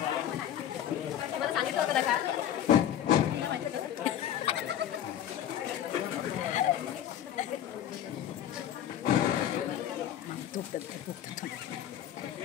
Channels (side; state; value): right; quieter; 10.7 dB